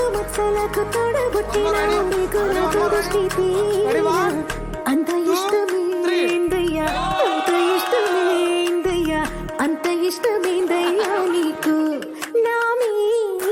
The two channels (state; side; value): identical; both; correlation 1.00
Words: మచ్చలకు తోడబుట్టినావు నీకు నాకు దృష్టి తీయా అంత ఇష్టమేందయ్యా అంత ఇష్టమేందయ్యా అంత ఇష్టమేందయ్యా నీకు నా